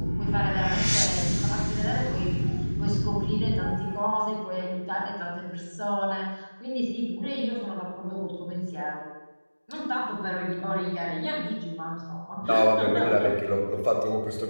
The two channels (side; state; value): both; inverted; correlation -1.00